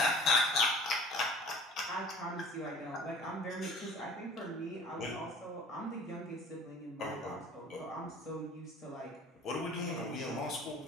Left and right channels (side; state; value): both; normal; correlation 0.46